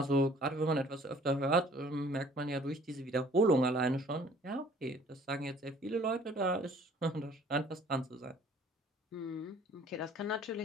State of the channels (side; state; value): both; normal; correlation 0.54